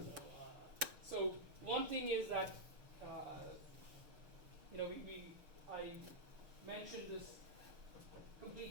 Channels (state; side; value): late; left; 6.7 ms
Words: So one thing is that I mentioned this